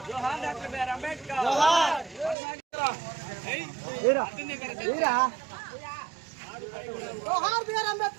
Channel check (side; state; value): left; drops out; at 2.4 s